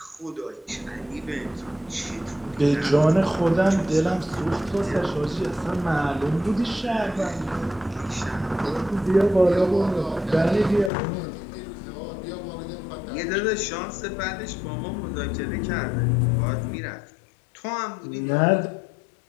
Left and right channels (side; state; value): right; drops out; at 10.9 s